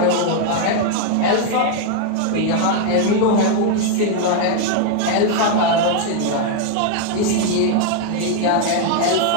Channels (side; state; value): both; different; correlation 0.00